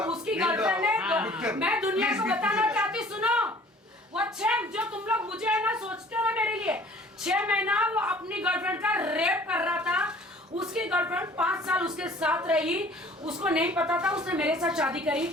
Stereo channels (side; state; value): both; normal; correlation 0.51